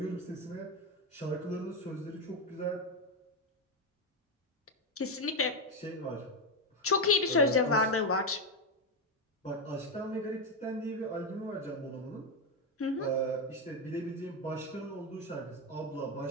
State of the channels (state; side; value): normal; both; correlation 0.08